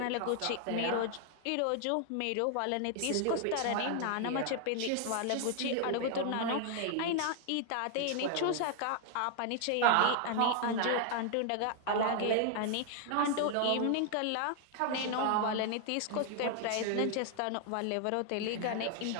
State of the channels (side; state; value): both; different; correlation 0.00